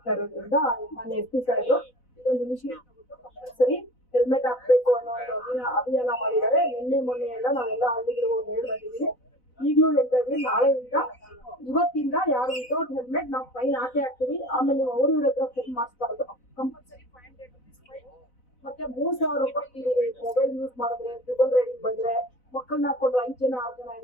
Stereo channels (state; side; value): late; right; 4.0 ms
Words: ಇರೋದ್ರಿಂದ ಮೊನ್ನೆ SP ಸಾಹೇಬರು ಇದೊಂದು ಇನಿಷಿಯೇಟಿವ್ ತಗೊಂಡು ಕಂಪಲ್ಸರಿ ಹೆಲ್ಮೆಟ್ ಹಾಕ್ಬೇಕು ಅನ್ನೋ ಒಂದು ಅಭಿಯಾನ ಮಾಡಿದ್ದಾರೆ. ನಿನ್ನೆ ಮೊನ್ನೆ ಎಲ್ಲ ನಾವೆಲ್ಲ ಹಳ್ಳಿಗಳಿಗೆ ಹೋಗಿ ಹೇಳಿ ಬಂದಿದ್ದೀವಿ. ಈಗಲೂ ಹೇಳ್ತಾ ಇದ್ವಿ, ನಾಳೆಯಿಂದ ಇವತ್ತಿಂದ ಯಾರು ವಿತೌಟ್ ಹೆಲ್ಮೆಟ್ ನಾವು ಫೈನ್ ಹಾಕ್ತೀವಿ. ಆಮೇಲೆ ನೀವು ಅವ್ರ ಹತ್ರ ಫೋನ್ ಮಾಡಿಸ್ಬಾರ್ದು, ಕಂಪಲ್ಸರಿ 500 rupees ಫೈನ್, ಮತ್ತೆ 3000 ರೂಪಾಯಿ ಮೊಬೈಲ್ ಯೂಸ್ ಮಾಡಿದ್ರೆ, ಟ್ರಿಬಲ್ ರೈಡಿಂಗ್ ಬಂದ್ರೆ, ಮಕ್ಕಳನ್ನ ಹಾಕೊಂಡು 5 ಜನ 6 ಜನ